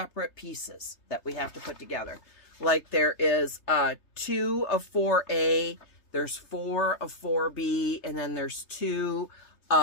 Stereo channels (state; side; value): late; right; 3.3 ms